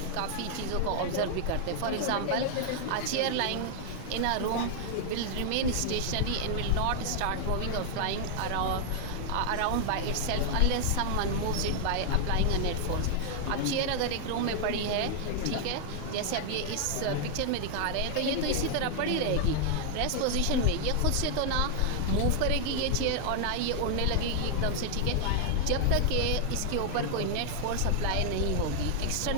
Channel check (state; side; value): different; both; correlation 0.00